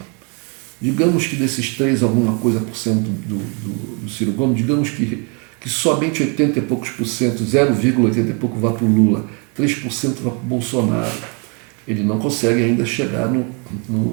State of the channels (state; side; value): quieter; left; 34.8 dB